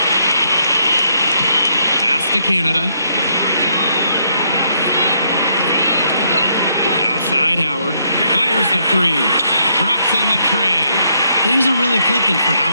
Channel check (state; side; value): inverted; both; correlation -0.73